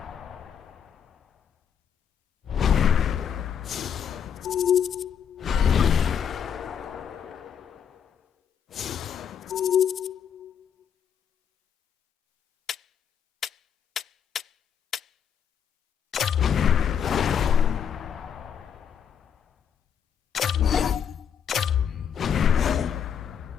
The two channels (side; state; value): right; quieter; 8.0 dB